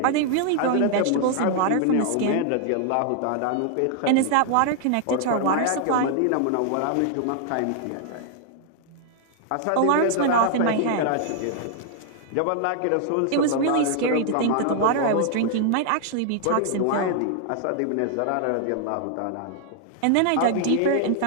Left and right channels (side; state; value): both; different; correlation 0.00